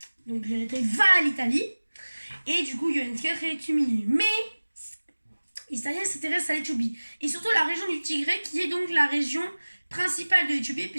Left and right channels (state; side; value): inverted; both; correlation -1.00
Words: Donc l'Érythrée va à l'Italie et du coup Johannes IV est humilié. Mais les Italiens s'intéressent à l'Éthiopie et surtout la région du Tigré qui est donc la région principale de l'Éthiopie